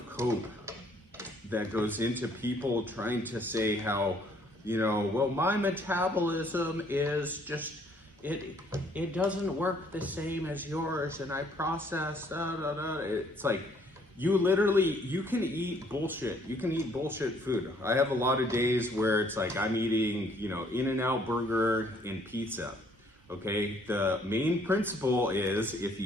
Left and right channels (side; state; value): both; normal; correlation 0.63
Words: cope that goes into people trying to say how, well, my metabolism is just, it doesn't work the same as yours, and I process, It's like, you can eat bullshit. You can eat bullshit food. I have a lot of days where it's like I'm eating, In-N-Out burger and pizza. Okay, the main principle is if